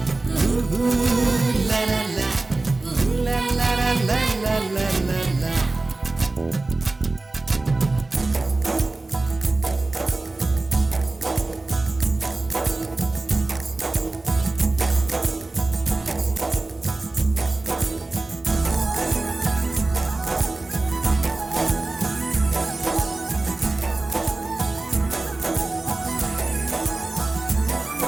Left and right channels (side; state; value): left; quieter; 3.2 dB